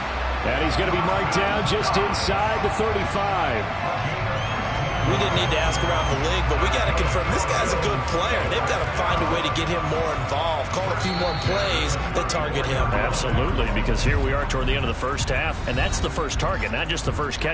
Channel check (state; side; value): identical; both; correlation 1.00